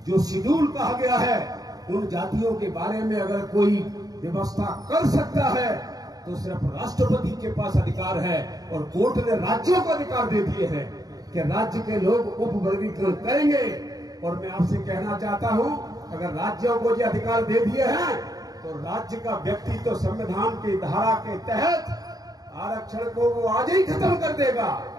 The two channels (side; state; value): left; late; 0.18 ms